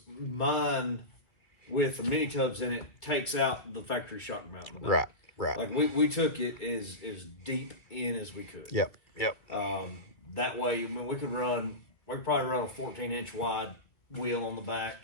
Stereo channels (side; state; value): right; late; 2.0 ms